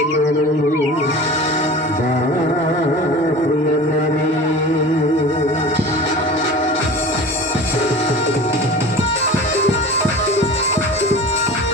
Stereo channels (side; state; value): both; normal; correlation 0.37